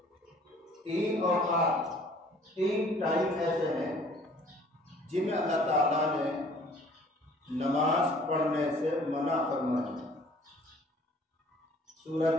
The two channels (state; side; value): normal; both; correlation 0.54